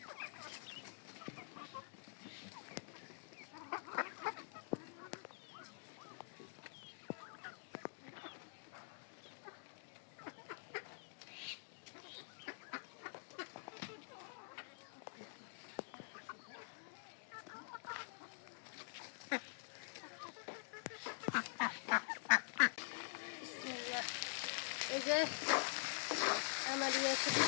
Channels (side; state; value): right; silent; digital silence